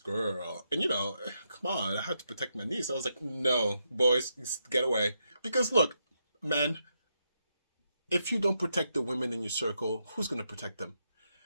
And come on, I had to protect my niece. I was like, "No, boys, get away." Because look, men, if you don't protect the women in your circle, who's going to protect them?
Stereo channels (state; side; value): inverted; both; correlation -0.82